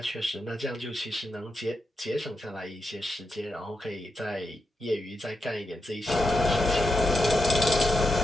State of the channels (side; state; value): both; normal; correlation 0.86